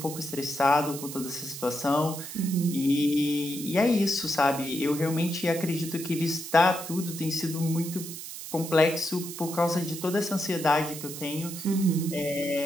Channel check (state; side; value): noise; right; hiss, 10 dB below the sound